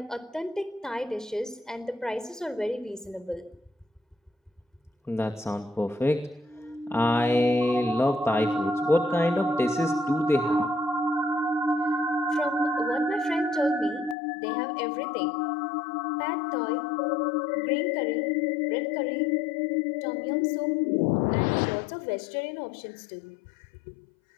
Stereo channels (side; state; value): right; drops out; at 14.2 s